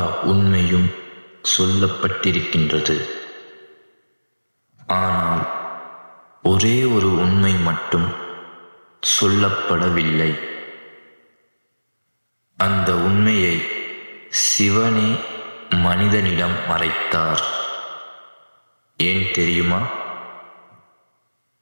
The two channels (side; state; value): both; inverted; correlation -1.00